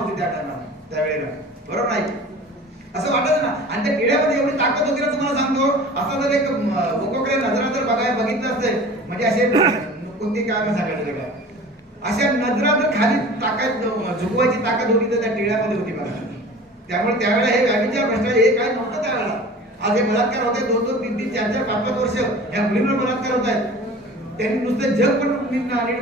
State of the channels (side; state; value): both; normal; correlation 0.41